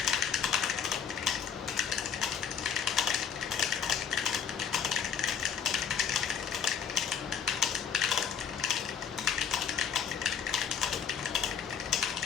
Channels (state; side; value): quieter; right; 7.5 dB